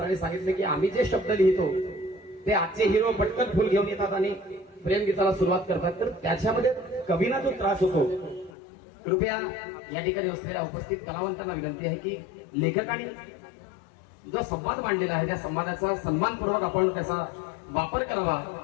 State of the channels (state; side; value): drops out; right; at 8.5 s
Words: सांगितले की आम्ही जे शब्द लिहितो ते आजचे हिरो पटकन फुल घेऊन येतात आणि प्रेमगीताला सुरुवात करतात, तर त्याच्यामध्ये कवीला जो त्रास होतो. कृपया या ठिकाणी असलेल्या उपस्थित कलावंतांना विनंती आहे की लेखकाने जो संवाद मांडलेला आहे त्या संवादाचा सन्मानपूर्वक आपण त्याचा वापर करावा,